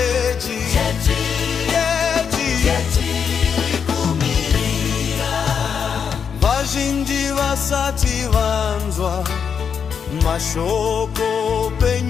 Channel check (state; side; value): quieter; right; 6.9 dB